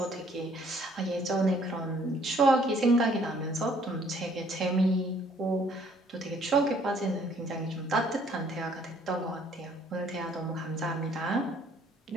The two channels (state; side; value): normal; both; correlation 0.62